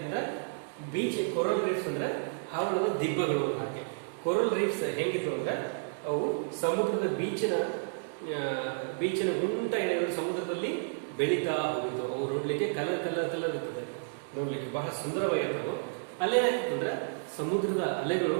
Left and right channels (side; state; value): left; silent; digital silence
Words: ಬೀಚ್ ಕೊರಲ್ ರೀಫ್ಸ್ ಅಂದ್ರೆ ಹವಳದ ದಿಬ್ಬಗಳು. ಹಾಗೆ ಕೊರಲ್ ರೀಫ್ಸ್ ಹೇಗಿತ್ತು ಅಂದ್ರೆ ಅವು ಸಮುದ್ರದ ಬೀಚಿನ ಉಂಟ ಏನಾದ್ರು ಸಮುದ್ರದಲ್ಲಿ ಬೆಳೀತಾ ಹೋಗಿತ್ತು. ಅವು ನೋಡ್ಲಿಕ್ಕೆ ಕಲರ್ ಇರ್ತದೆ, ನೋಡ್ಲಿಕ್ಕೆ ಬಹಳ ಸುಂದರವಾಗಿರ್ತವು. ಅಲ್ಲೇನಾಗ್ತದೆ ಅಂದ್ರೆ ಸಮುದ್ರದ ಅಲೆಗಳು